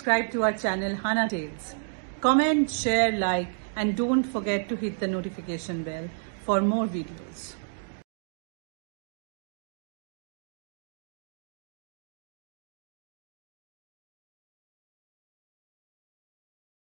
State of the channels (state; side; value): silent; left; digital silence